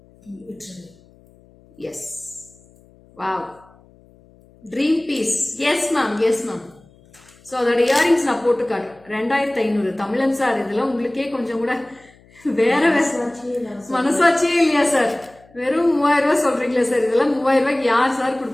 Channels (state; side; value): noise; left; hum, 28 dB below the sound